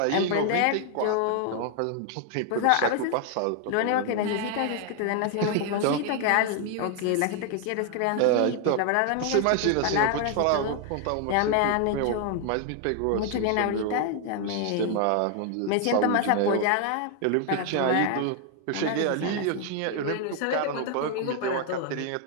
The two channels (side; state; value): both; different; correlation 0.00